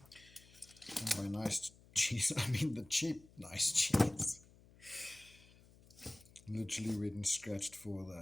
And by nice cheese, I mean the cheap nice cheese. Literally went and scratched for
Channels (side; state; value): left; noise; hum, 24 dB below the sound